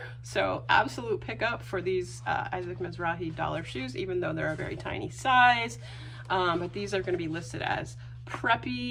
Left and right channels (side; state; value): both; identical; correlation 1.00